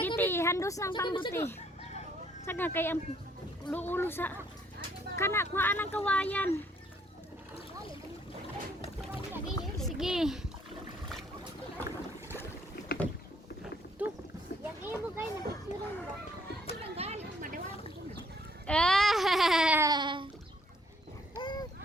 ti, handos ng pambuti. Saga kay ang ulo sa kana kuhaan ang kawayan. Sige. Tu. Yang iyo mo kayo, napicturan mo ba?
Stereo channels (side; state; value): both; normal; correlation 0.65